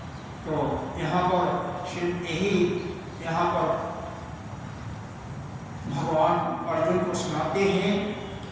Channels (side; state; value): both; identical; correlation 1.00